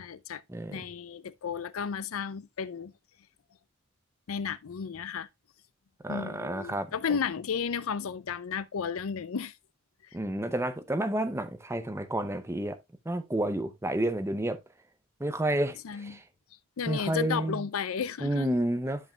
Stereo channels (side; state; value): both; normal; correlation 0.50